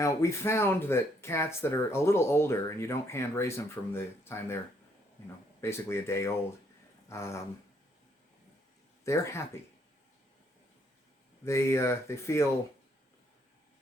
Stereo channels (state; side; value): normal; both; correlation 0.70